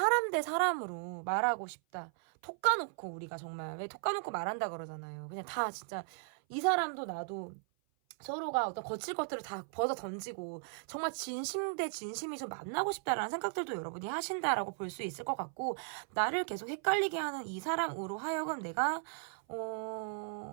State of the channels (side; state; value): left; silent; 53 dB below the other